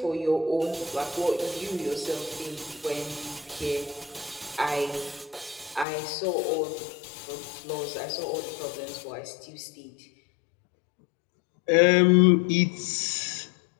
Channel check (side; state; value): right; drops out; at 5.9 s